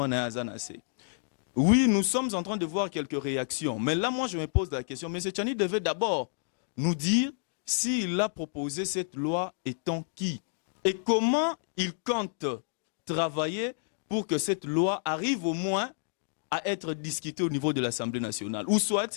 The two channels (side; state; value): right; silent; digital silence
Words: na azanase ». Oui, nous sommes en train de voir quelques réactions. Mais là, moi, je me pose la question. M. Tchani devait d'abord nous dire s'il a proposé cette loi étant qui et comment il compte travailler pour que cette loi arrive au moins à être discutée au niveau de l'Assemblée nationale. Ou